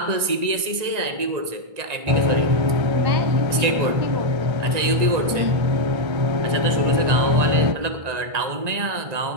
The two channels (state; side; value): late; left; 1.9 ms